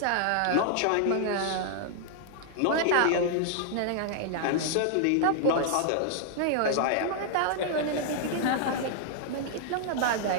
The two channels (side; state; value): both; different; correlation 0.00